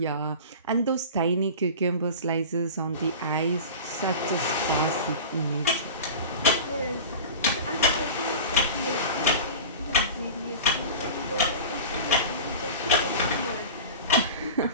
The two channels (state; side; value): inverted; both; correlation -0.33